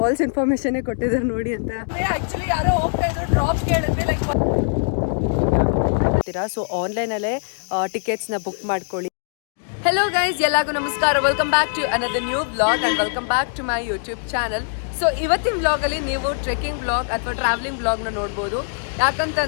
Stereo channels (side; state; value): right; silent; digital silence